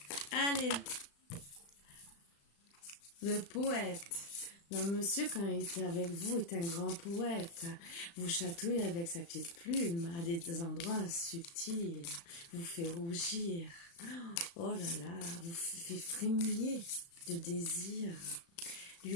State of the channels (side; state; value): right; late; 35 ms